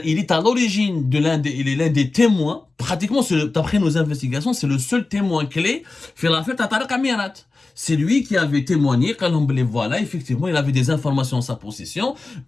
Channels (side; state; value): right; quieter; 3.5 dB